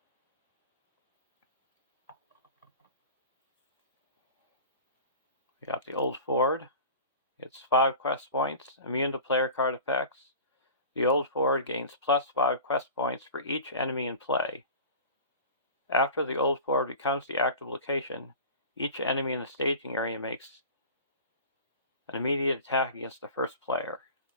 We got the old ford. It's 5 quest points, immune to player card effects. The old ford gains +5 quest points for each enemy in play. After the old ford becomes the active location, each enemy in the staging area makes an immediate attack against the first player.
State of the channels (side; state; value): both; inverted; correlation -0.37